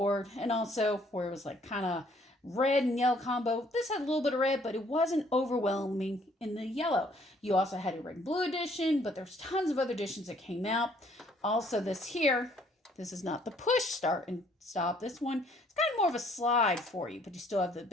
and also where it was like kind of red and yellow combo. This had a little bit of red, but it wasn't overwhelming in the yellow. You also had a red and blue edition, but there's tons of other editions that came out. Also this here, this is not the push start and stop. This one, it's kind of more of a slide for you, but you still have the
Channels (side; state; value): both; normal; correlation 0.63